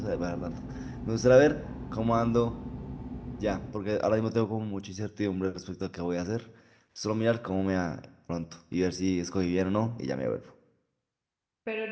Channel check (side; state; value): both; identical; correlation 1.00